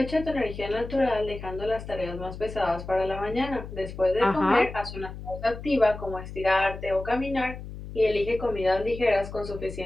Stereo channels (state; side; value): noise; left; hum, 11 dB below the sound